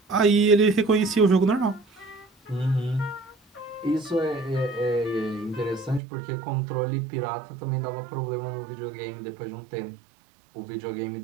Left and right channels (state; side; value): drops out; left; at 6.0 s